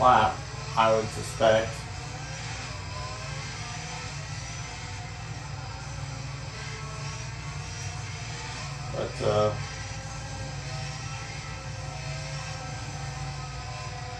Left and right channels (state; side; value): identical; both; correlation 1.00